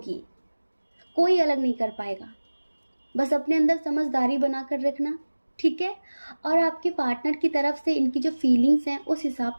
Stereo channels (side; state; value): both; inverted; correlation -1.00